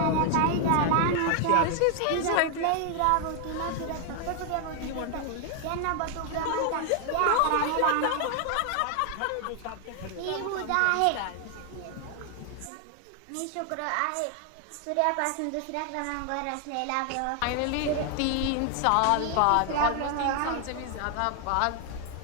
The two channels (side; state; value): both; different; correlation 0.00